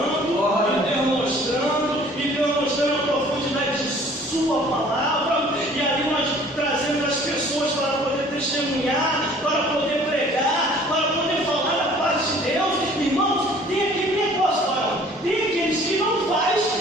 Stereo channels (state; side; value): normal; both; correlation 0.52